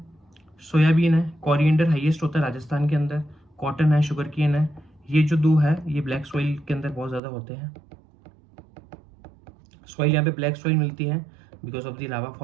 सोयाबीन है, कोरिएंडर हाईएस्ट होता है राजस्थान के अंदर, कॉटन है, शुगर केन है। ये जो दो है ये ब्लैक सॉइल के अंदर बहुत ज़्यादा होते हैं। सॉइल यहाँ पे ब्लैक सॉइल मिलती है because of the lava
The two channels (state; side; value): drops out; left; at 7.2 s